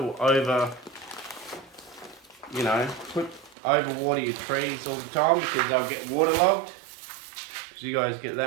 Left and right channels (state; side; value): drops out; left; at 3.6 s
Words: overwater your trees all the time because they'll get waterlogged. Because you guys get